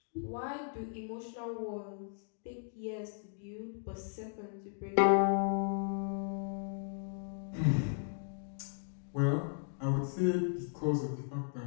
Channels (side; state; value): right; silent; digital silence